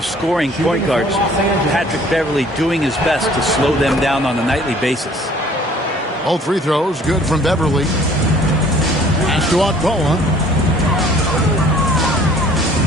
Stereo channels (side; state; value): both; normal; correlation 0.54